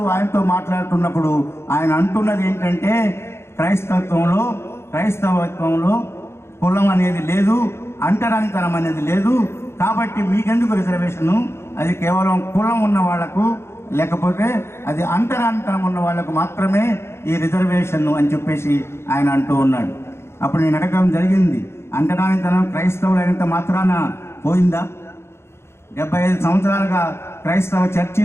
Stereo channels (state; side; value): late; right; 0.12 ms